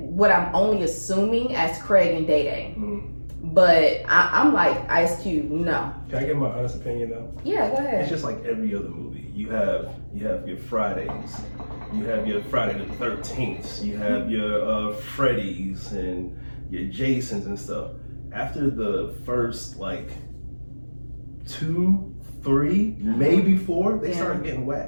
what I'm only assuming as Craig and Day Day. But I'm like, Ice Cube, no. Can I give my honest opinion though? Yeah, go ahead. It's just like every other movie. You have your Fridays, you have your Friday the 13th, you have your Freddy's and your Jasons and stuff. After the first like 2, 3, maybe 4, they start getting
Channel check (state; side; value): inverted; both; correlation -1.00